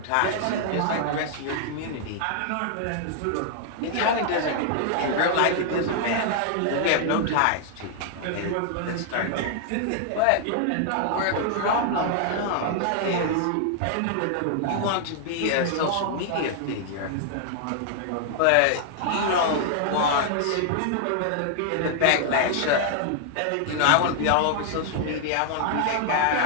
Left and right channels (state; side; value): different; both; correlation 0.00